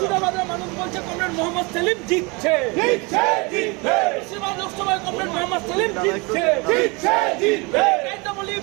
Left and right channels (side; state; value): left; quieter; 27.9 dB